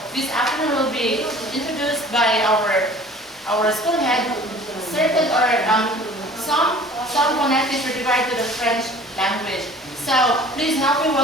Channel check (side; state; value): both; normal; correlation 0.47